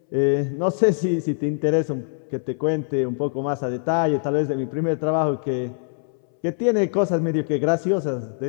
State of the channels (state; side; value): silent; right; 63 dB below the other